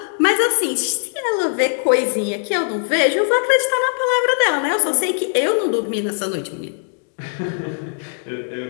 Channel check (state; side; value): silent; right; digital silence